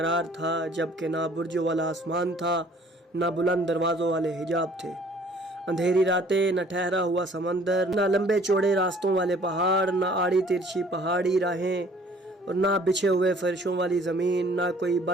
تھا جب کہ نہ برجوں والا آسمان تھا نہ بلند دروازوں والے حجاب تھے، اندھیری راتیں، نہ ٹھہرا ہوا سمندر، نہ لمبے چوڑے راستوں والے پہاڑ، نہ آڑی ترچھی پہاڑی راہیں، اور نہ بچھے ہوئے فرشوں والی زمین، نہ کوئی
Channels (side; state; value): both; normal; correlation 0.55